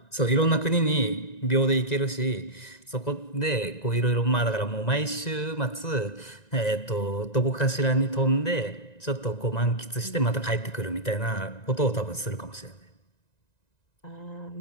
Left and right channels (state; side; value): late; right; 1.9 ms